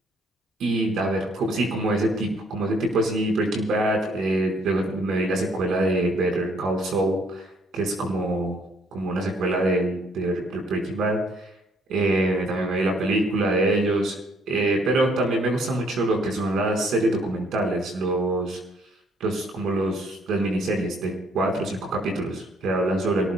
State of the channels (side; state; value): both; normal; correlation 0.65